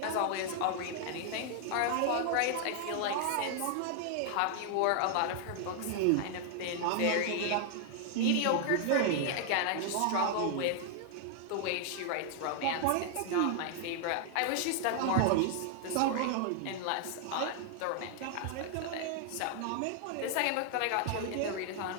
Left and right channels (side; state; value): both; different; correlation 0.00